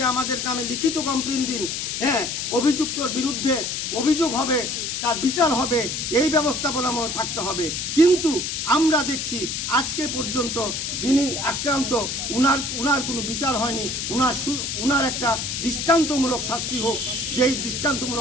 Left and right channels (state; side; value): noise; left; hiss, 3 dB below the sound